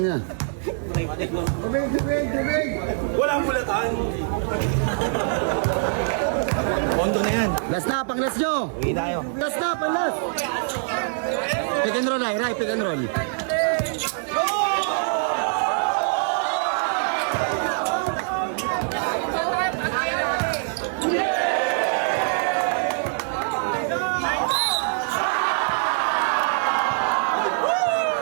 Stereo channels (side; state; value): left; silent; 63 dB below the other